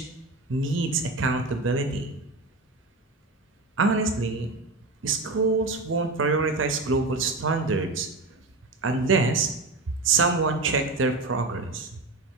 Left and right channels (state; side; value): quieter; left; 3.3 dB